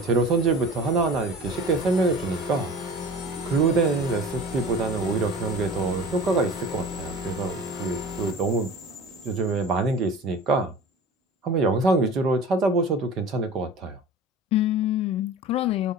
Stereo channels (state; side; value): normal; both; correlation 0.38